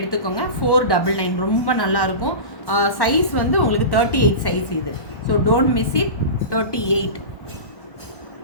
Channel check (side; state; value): right; late; 1.1 ms